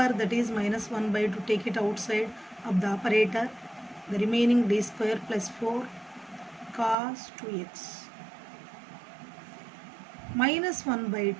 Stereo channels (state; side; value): drops out; left; at 7.0 s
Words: that is minus 1 by 2. Take it outside of the operator. The remaining d square plus 4 cos 2x minus 1 by